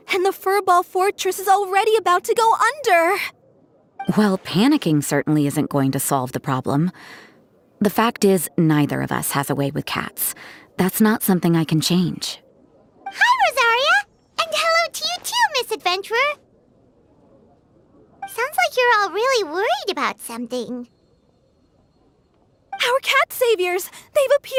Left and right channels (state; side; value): identical; both; correlation 1.00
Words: and the Furball Fortress is already about to go under. Well, panicking certainly isn't going to solve the problem. The fact is, neither of us has a way with cats. That's not something I can change. Hi, Rosaria! And hello to you too, Miss Adventurer. Sounds like you're all really worried about something. Our cat saviors! They've